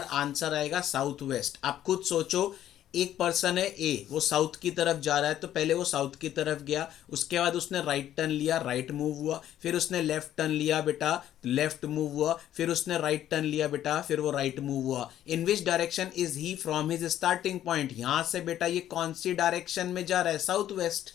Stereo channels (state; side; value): quieter; right; 11.8 dB